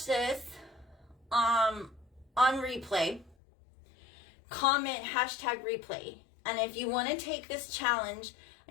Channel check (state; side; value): drops out; right; at 3.4 s